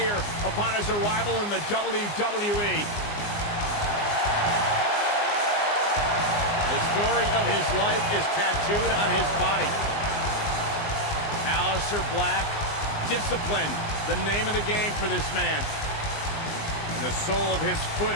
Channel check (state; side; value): late; right; 19 ms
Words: upon his arrival in the WWE. The story of his life is tattooed on his body. Aleister Black, discipline, the name of the game for this man. And the sole of his foot